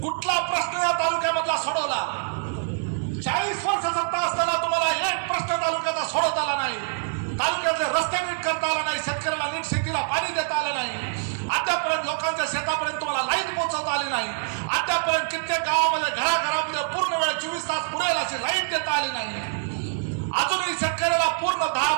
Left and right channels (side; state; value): left; silent; digital silence